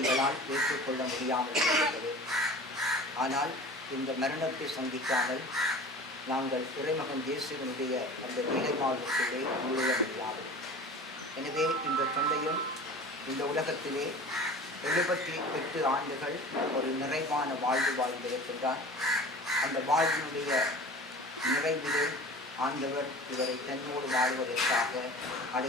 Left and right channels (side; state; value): both; normal; correlation 0.39